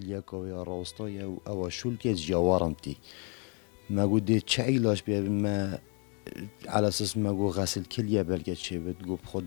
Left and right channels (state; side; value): quieter; right; 35.8 dB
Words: که یا راستای او شول که جوارم تی ما گوت چه علاج بیا ما على اساس ما گو غسل کلیه بلکه چه بد گو